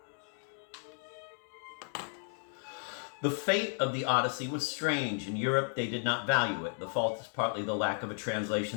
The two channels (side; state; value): right; silent; 55 dB below the other